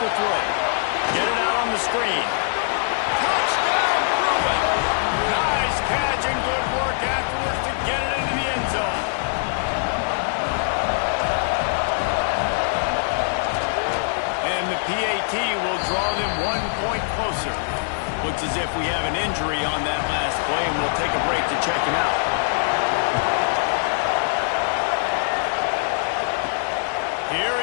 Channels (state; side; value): silent; right; digital silence